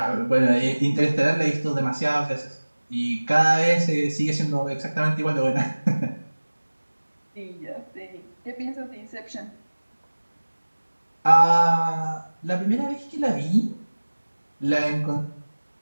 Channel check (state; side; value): inverted; both; correlation -1.00